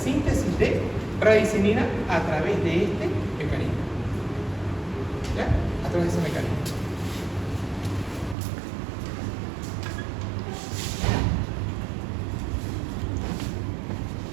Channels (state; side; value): drops out; left; at 8.3 s